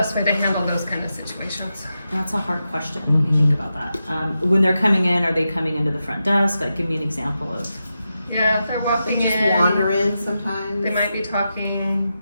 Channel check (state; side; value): inverted; both; correlation -0.89